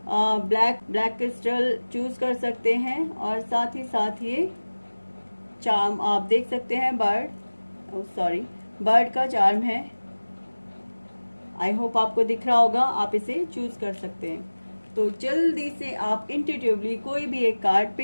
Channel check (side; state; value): both; inverted; correlation -1.00